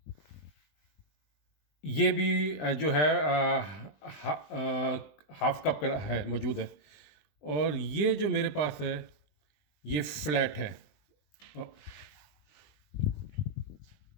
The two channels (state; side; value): late; right; 20 ms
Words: ये भी जो है हाफ कप का है, मौजूद है। और ये जो मेरे पास है ये फ्लैट है। अ,